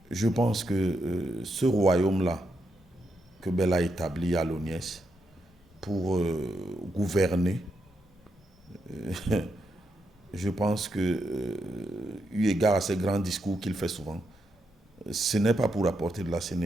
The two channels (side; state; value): both; normal; correlation 0.82